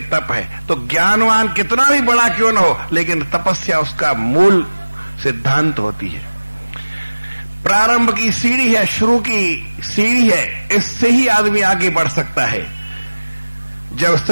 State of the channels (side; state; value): both; inverted; correlation -1.00